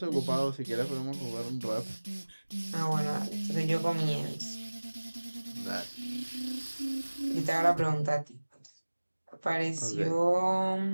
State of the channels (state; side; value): inverted; both; correlation -1.00